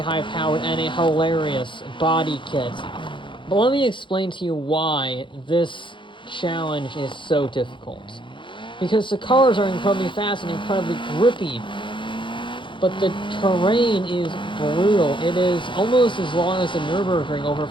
high-powered, and a hilarious body kit. But let me explain to you why this challenge is so difficult. Because the cars are incredibly fast and incredibly grippy, but the terrain is brutal. It is almost as long as the Nürburgring, over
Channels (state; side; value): late; right; 0.24 ms